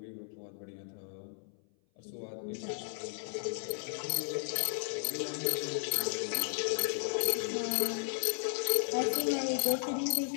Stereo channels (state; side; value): silent; right; 55 dB below the other